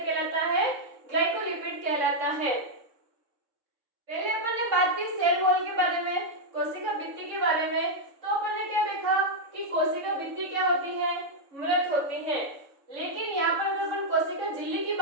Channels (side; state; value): left; late; 3.6 ms